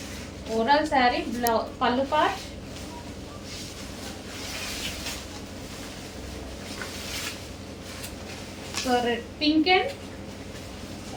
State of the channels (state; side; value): identical; both; correlation 1.00